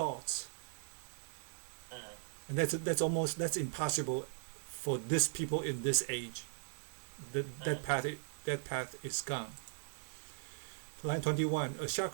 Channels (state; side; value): silent; left; 52 dB below the other